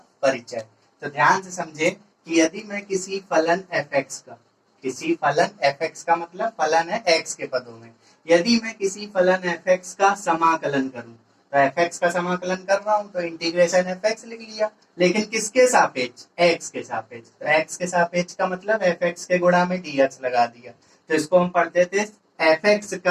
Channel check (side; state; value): both; identical; correlation 1.00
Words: परिचय। तो ध्यान से समझें कि यदि मैं किसी फलन f(x) का मतलब फलन है x के पदों में, यदि मैं किसी फलन f(x) का समाकलन करूं, तो f(x) का समाकलन कर रहा हूं तो इंटीग्रेशन f(x) लिख लिया, लेकिन किसके सापेक्ष? x के सापेक्ष। तो x के सापेक्ष का मतलब f(x) के गुणा में dx लगा दिया, तो इसको हम पढ़ते थे f(x)